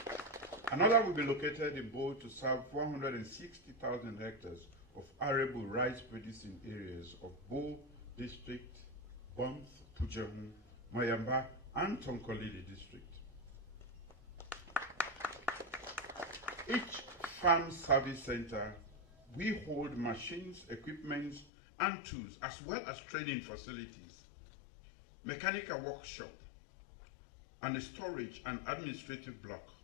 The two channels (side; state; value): right; drops out; at 21.5 s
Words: Another will be located in Bo to serve 160,000 hectares of arable rice producing areas of Bo district, Banff, Pujahu, Mayamba, and Tonkolili district. Each farm service center, we hold machines, equipment, and tools, as well as training facilities, mechanical workshop, and a storage and administrative block.